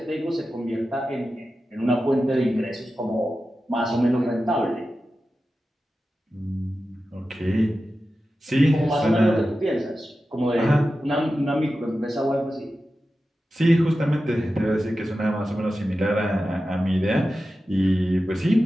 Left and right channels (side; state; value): both; normal; correlation 0.93